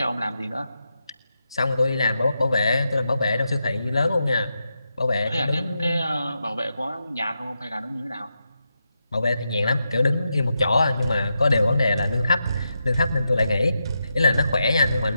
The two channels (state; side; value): inverted; both; correlation -0.86